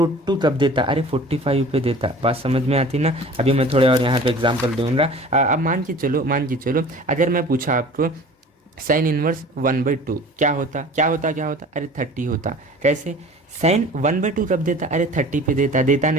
कब देता, अरे 45 पे देता। बात समझ में आती ना। अभी मैं थोड़े और यहाँ पे एग्जांपल दूंगा। अब मान के चलो अगर मैं पूछा आपको साइन इनवर्स 1/2 क्या होता, अरे 30 होता। कैसे, साइन 1/2 कब देता, अरे 30 पे देता। देता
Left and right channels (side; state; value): both; normal; correlation 0.43